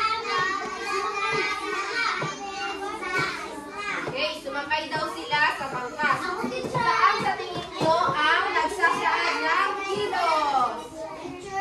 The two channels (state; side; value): identical; both; correlation 1.00